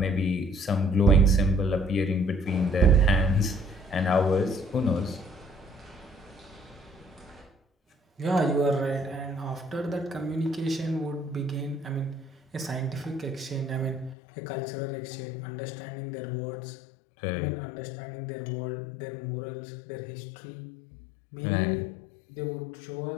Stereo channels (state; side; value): drops out; right; at 14.2 s